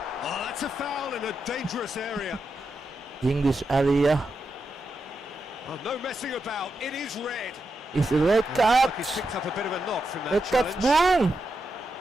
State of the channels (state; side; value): normal; both; correlation 0.86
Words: Oh, that's a foul in a dangerous area. English area. Oh, no messing about. It is red. Is a red And card. he's picked up a bit of a knock from that Red card, challenge. boom.